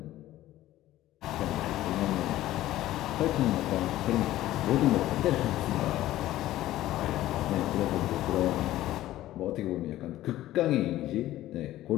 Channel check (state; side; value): quieter; right; 14.8 dB